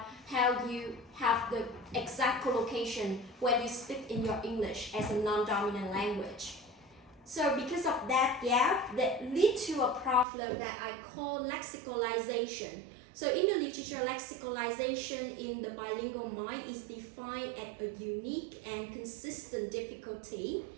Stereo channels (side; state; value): left; drops out; at 10.2 s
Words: how you have the exact collocation when you speak in your English as a non-dominant language. So because of that gap, that leads to a problem that I call lexicalization. So in the literature, lexicalization in the bilingual mind is defined as a unique and consistent difficulty,